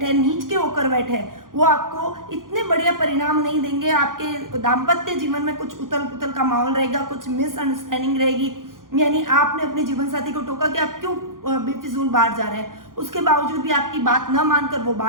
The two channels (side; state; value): left; late; 0.90 ms